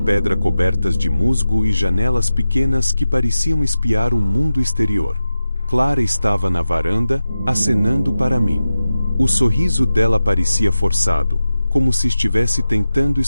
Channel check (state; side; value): inverted; both; correlation -0.93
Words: cobertas de musgo e janelas pequenas que pareciam espiar o mundo exterior. Clara estava na varanda, acenando para mim. O sorriso dela parecia forçado, como se estivesse tentando